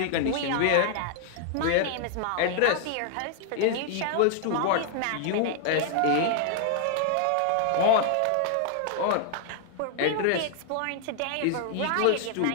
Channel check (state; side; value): different; both; correlation 0.00